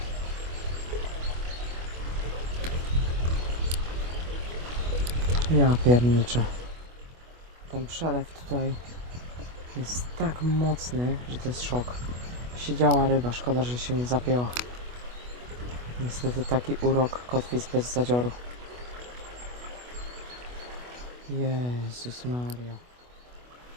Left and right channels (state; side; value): late; left; 25 ms